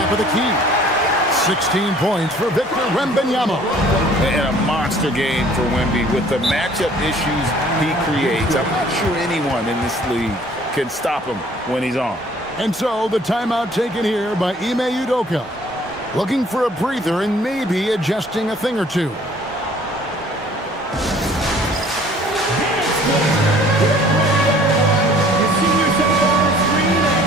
of the key. 16 points for Victor Wembanyama. And a monster game for Wemby with the matchup issues he creates. I'm not sure anyone in this league can stop him when he's on. And so the timeout taken here by Ime Udoka. Looking for a breather and maybe adjusting a thing or two.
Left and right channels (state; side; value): normal; both; correlation 0.54